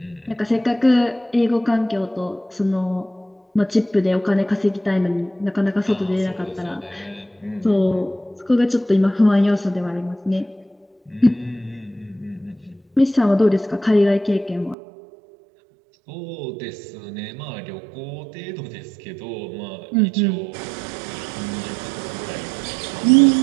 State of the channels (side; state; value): left; drops out; at 14.8 s